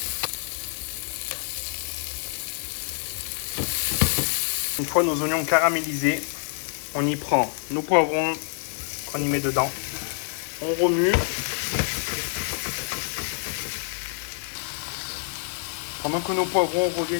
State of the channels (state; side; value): silent; right; 60 dB below the other